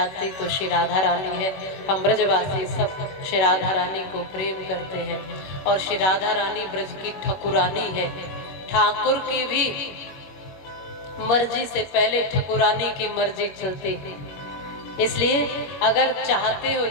तो श्री राधा रानी है। हम ब्रजवासी सब श्री राधा रानी को प्रेम करते हैं, और श्री राधा रानी ब्रज की ठकुरानी है। ठाकुर की भी मर्जी से पहले ठकुरानी की मर्जी चलती है। इसलिए अगर चाहते हो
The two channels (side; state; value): right; late; 21 ms